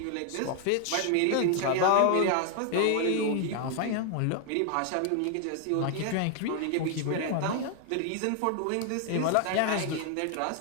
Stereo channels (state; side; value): different; both; correlation 0.00